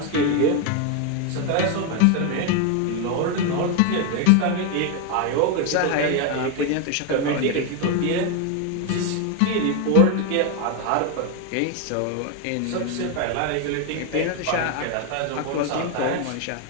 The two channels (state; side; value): different; both; correlation 0.01